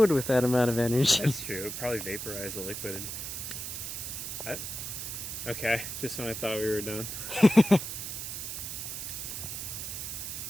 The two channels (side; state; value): right; noise; hiss, 6 dB below the sound